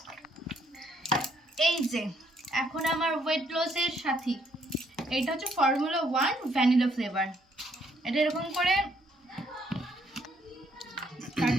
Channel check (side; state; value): both; normal; correlation 0.69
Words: এই যে এখন আমার ওয়েট লসের সাথী, এটা হচ্ছে ফর্মুলা 1 ভ্যানিলা ফ্লেভার। এটা এরকম করে